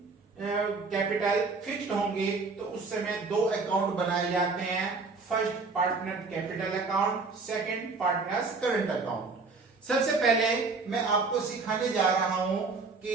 कैपिटल फिक्स्ड होंगे तो उस समय दो अकाउंट बनाए जाते हैं, first partner capital account, second partners current account. सबसे पहले मैं आपको सिखाने जा रहा हूं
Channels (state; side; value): quieter; left; 4.1 dB